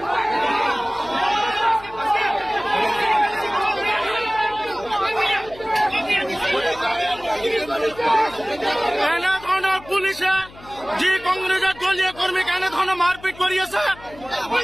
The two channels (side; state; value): left; noise; hum, 21 dB below the sound